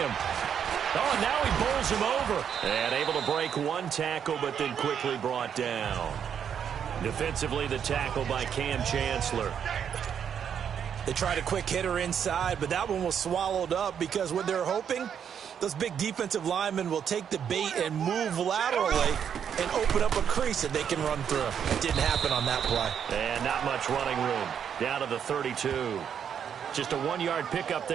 Oh, and now he bowls him over. And able to break one tackle, but then quickly brought down. Defensively, the tackle by Cam Chancellor. They tried a quick hitter inside, but that one was swallowed up because what they're hoping, those big defensive linemen will take the bait and move laterally and open up a crease that they can run through. It didn't happen on that play. And not much running room. Down to the 32. Just a 1-yard pickup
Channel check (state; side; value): quieter; left; 8.1 dB